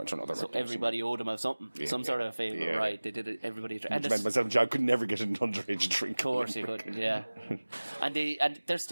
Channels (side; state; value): both; inverted; correlation -1.00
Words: or another. So everybody owed them of something, some sort of a favour, right? They did it, everybody... And myself and John could never get an underage drink. Of course you could, yeah. and there's